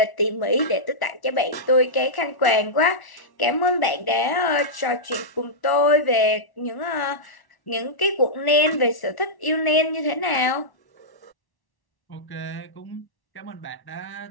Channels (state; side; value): late; right; 1.1 ms